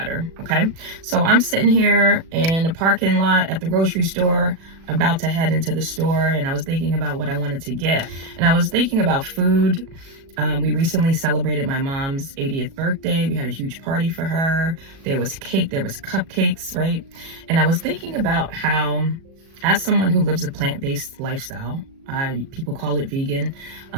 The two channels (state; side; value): late; left; 37 ms